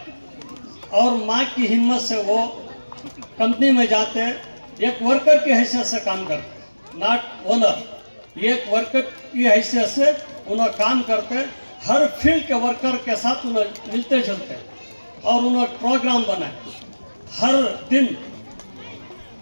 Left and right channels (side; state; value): both; inverted; correlation -1.00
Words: और माँ की हिम्मत से वो कंपनी में जाते, एक वर्कर की हैसियत से काम करते, नॉट ओनर। एक वर्कर की हैसियत से उन्हें काम करते, हर फील्ड के वर्कर के साथ उन्हें मिलते जुलते और उन्हें प्रोग्राम बनाए। हर दिन